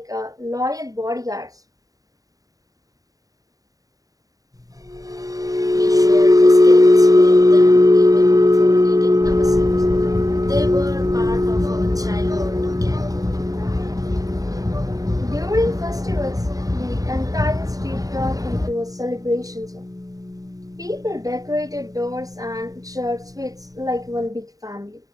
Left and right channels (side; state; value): left; late; 0.17 ms